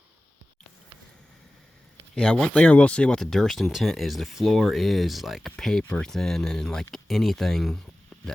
Yeah, one thing I will say about the Durston tent is the floor is like paper thin, and like anything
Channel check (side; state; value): both; normal; correlation 0.96